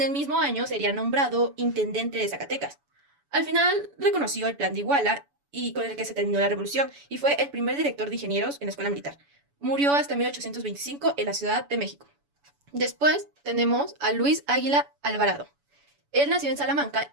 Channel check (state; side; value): late; left; 7.0 ms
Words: el mismo año sería nombrado intendente de Zacatecas. Al final reconoció el plan de Iguala, y con el que se terminó la revolución, y fue el primer director de ingenieros en la escuela militar. Murió hasta 1825 en la Ciudad de México. Después tenemos a Luis Águila Alvarado. Él nació en